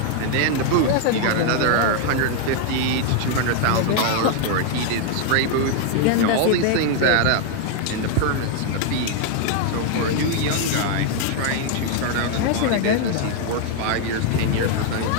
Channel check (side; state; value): both; different; correlation 0.00